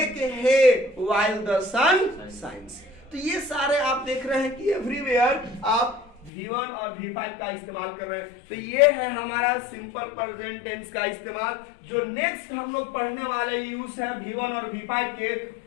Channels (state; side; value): drops out; right; at 6.3 s